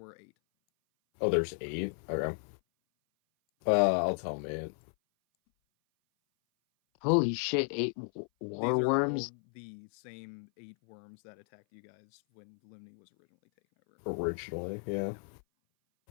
8. Oh, there's 8? Okay. I'll tell mate. Holy shit, 8 These are warworms? all the same 8 worms that attacked you guys when Limni was originally taken over. Originally, yeah.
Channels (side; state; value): right; silent; 55 dB below the other